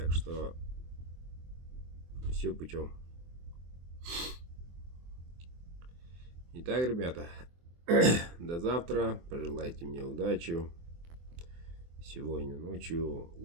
что все путем. Итак, ребята, до завтра. Пожелайте мне удачи. Сегодня ночью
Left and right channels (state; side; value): late; left; 24 ms